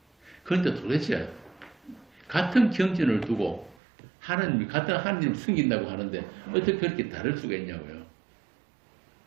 그런데 도대체 같은 경전을 두고 같은 하나님을 섬긴다고 하는데 어떻게 그렇게 다를 수가 있냐고요.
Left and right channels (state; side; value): drops out; left; at 3.8 s